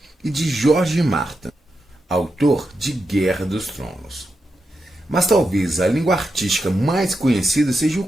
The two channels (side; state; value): both; normal; correlation 0.87